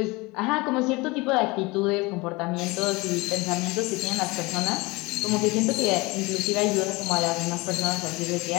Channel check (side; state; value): right; quieter; 23.9 dB